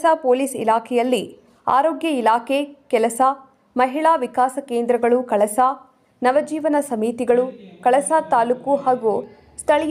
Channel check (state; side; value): identical; both; correlation 1.00